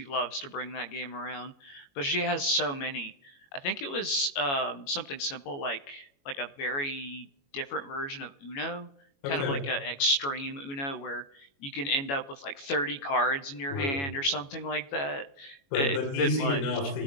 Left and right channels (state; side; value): late; right; 22 ms